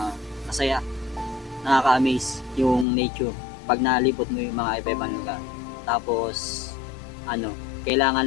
Masaya. Nakaka-amaze yung nature pag nalipot mo yung mga iba-ibang lugar. Tapos,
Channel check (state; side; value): drops out; right; at 2.9 s